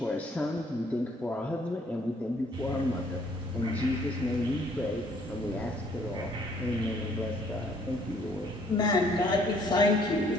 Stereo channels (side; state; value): both; normal; correlation 0.63